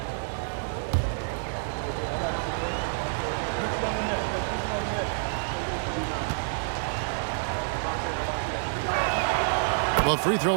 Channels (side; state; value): left; silent; 59 dB below the other